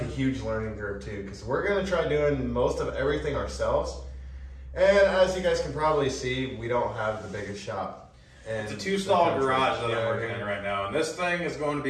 a huge learning curve too, because we're going to try doing most of everything ourselves. And as you guys can probably see, we don't have the biggest shop. It's a 2-stall garage that I'm working in right now, and this thing is going to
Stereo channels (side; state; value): both; identical; correlation 1.00